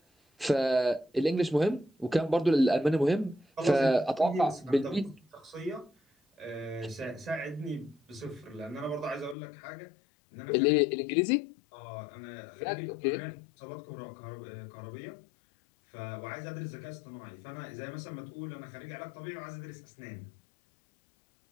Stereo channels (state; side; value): drops out; right; at 9.3 s